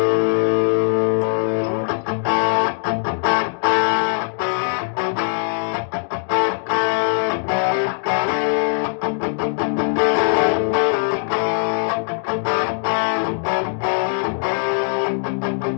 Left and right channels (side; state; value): right; silent; digital silence